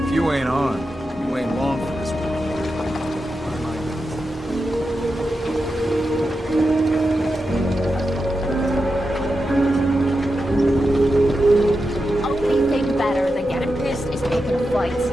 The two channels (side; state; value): both; normal; correlation 0.89